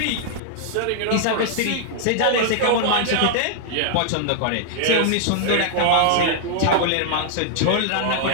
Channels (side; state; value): both; different; correlation 0.00